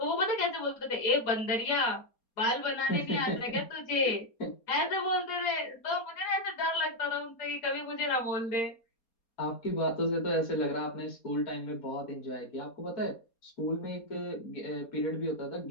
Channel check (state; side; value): late; right; 4.3 ms